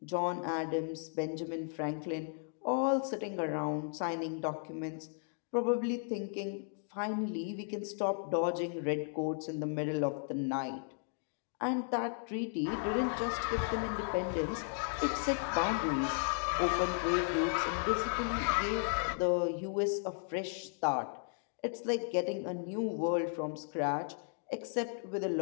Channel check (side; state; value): right; silent; 54 dB below the other